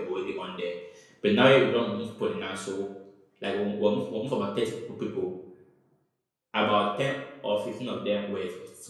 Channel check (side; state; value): both; identical; correlation 1.00